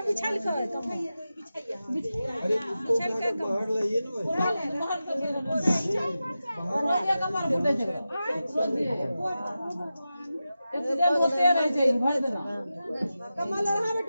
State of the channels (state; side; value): inverted; both; correlation -0.93